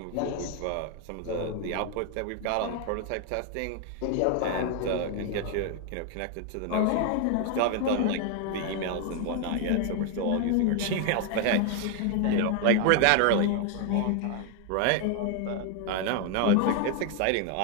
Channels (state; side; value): different; both; correlation 0.01